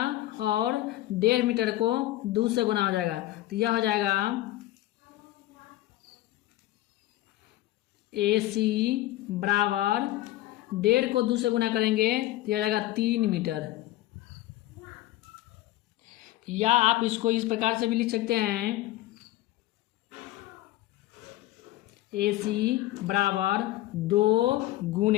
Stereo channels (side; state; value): right; quieter; 16.0 dB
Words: और 1.5 मीटर को 2 से गुना हो जाएगा, तो यह हो जाएगा AC बराबर 1.5 को 2 से गुना करेंगे तो यह हो जाएगा 3 मीटर। या आप इसको इस प्रकार से भी लिख सकते हैं AC बराबर 2